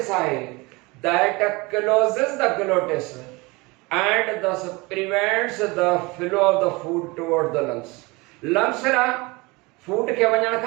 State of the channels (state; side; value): quieter; left; 24.5 dB